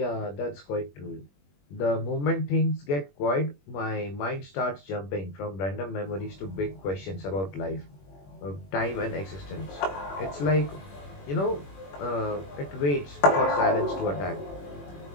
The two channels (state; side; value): late; right; 21 ms